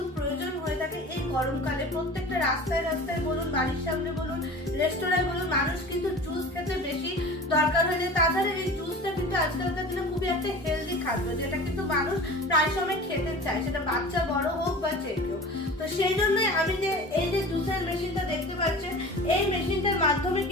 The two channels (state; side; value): normal; both; correlation 0.38